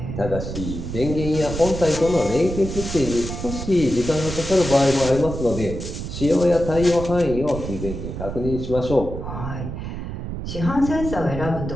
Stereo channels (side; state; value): right; noise; rumble, 7 dB below the sound